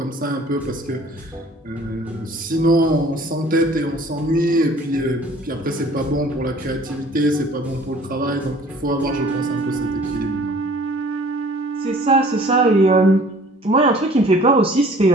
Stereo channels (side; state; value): both; normal; correlation 0.51